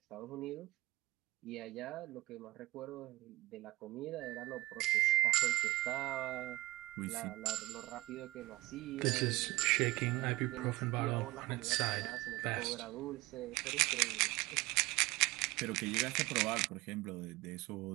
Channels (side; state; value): left; quieter; 19.5 dB